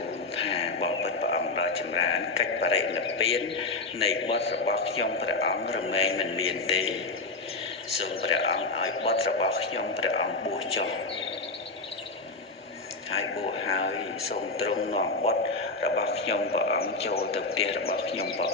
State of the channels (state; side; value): quieter; right; 3.6 dB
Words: ថាបបិទ្ធព្រះអង្គដ៏ចម្រើនកិច្ចបរិនិព្វាននៃបុត្ររបស់ខ្ញុំព្រះអង្គរមែងមិនមានទេសូមព្រះអង្គឲ្យបុត្ររបស់ខ្ញុំព្រះអង្គបួសចុះហើយបួសហើយសូមទ្រង់នាំបុត្ររបស់ខ្ញុំព្រះអង្គចូលទៅផ្ទះរបស់ខ្ញុំព្រះ